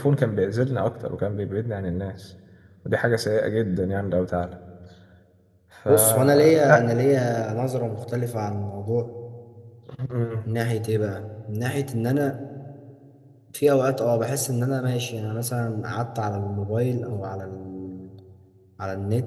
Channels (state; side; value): identical; both; correlation 1.00